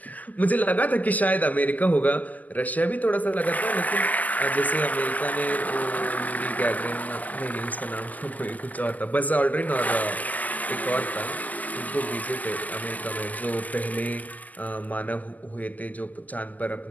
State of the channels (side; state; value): right; late; 0.080 ms